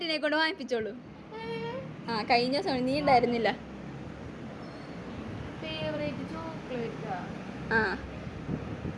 കൊണ്ട് വാങ്ങിപ്പിച്ചോളൂ. കഴിഞ്ഞ ദിവസം നീ ഉണ്ടായിരുന്നില്ല.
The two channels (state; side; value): identical; both; correlation 1.00